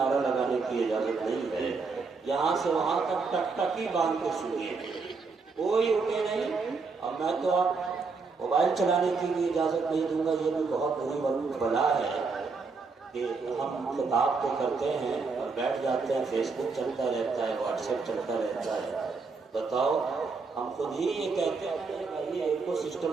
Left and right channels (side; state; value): left; quieter; 4.5 dB